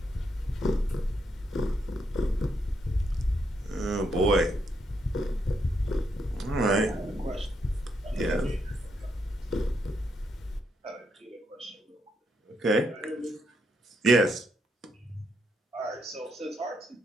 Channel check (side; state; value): both; normal; correlation 0.78